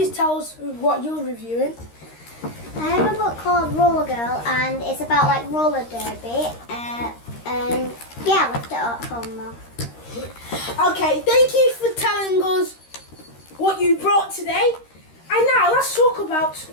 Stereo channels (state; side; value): late; right; 13 ms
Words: tell us what you're reviewing? I have a book called Roller Girl, and it's about like roller derby. And yeah, I left it at home now. Okay, thank you for telling us what you brought today. And now let's talk about